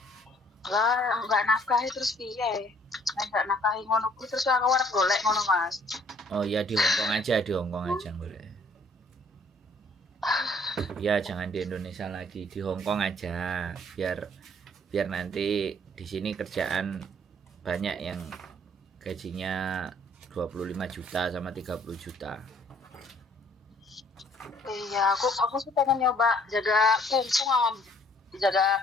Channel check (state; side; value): normal; both; correlation 0.60